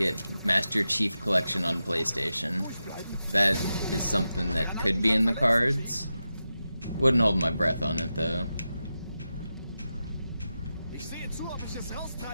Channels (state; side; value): inverted; both; correlation -0.91